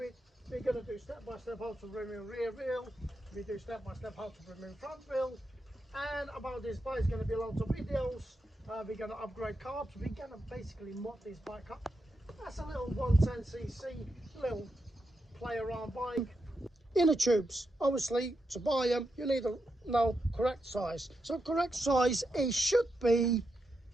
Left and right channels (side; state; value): both; normal; correlation 0.85